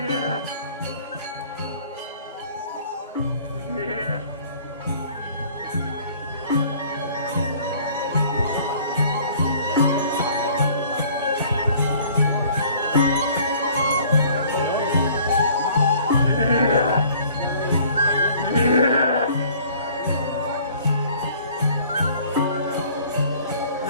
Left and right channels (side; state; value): both; inverted; correlation -0.53